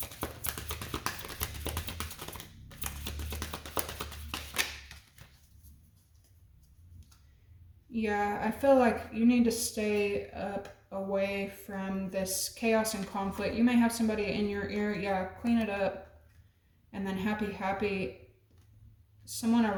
Yeah, I feel like you need to stay up away from this chaos and conflict. You may have somebody in your ear. Yeah, clean it up. And then happy. Someone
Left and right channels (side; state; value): both; identical; correlation 1.00